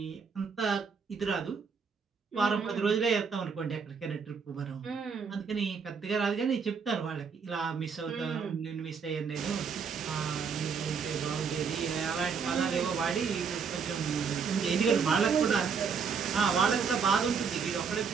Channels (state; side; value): quieter; left; 6.0 dB